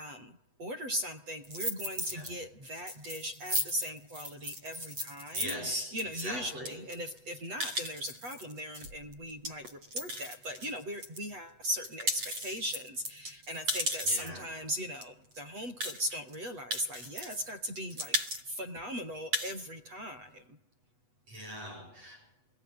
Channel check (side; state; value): left; late; 8.1 ms